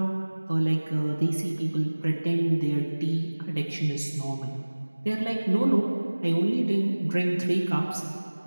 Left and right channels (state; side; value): inverted; both; correlation -1.00